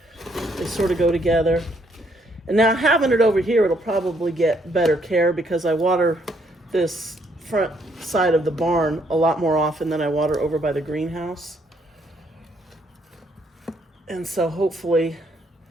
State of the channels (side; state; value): both; normal; correlation 0.70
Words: They sort of go together. And now having it over here, it'll probably get better care because I water this front side of the barn a lot more often than I water over by the greenhouse. And so hopefully